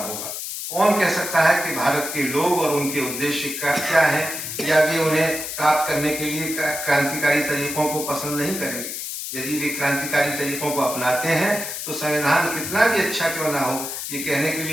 कौन कह सकता है कि भारत के लोग और उनके उद्देश्य क्या है, या वे उन्हें प्राप्त करने के लिए क्रांतिकारी तरीकों को पसंद नहीं करेंगे। यदि वे क्रांतिकारी तरीकों को अपनाते हैं तो संविधान कितना भी अच्छा क्यों ना हो, ये कहने के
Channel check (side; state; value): left; noise; hiss, 6 dB below the sound